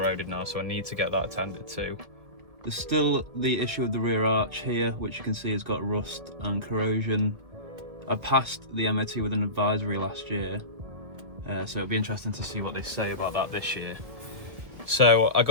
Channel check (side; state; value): left; late; 1.5 ms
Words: now, so I need to get that attended to. There's still the issue with the rear arch here, which you can see has got rust and corrosion. I passed the MOT with an advisory last year, so it'll be interesting to see what they say about that this year. So I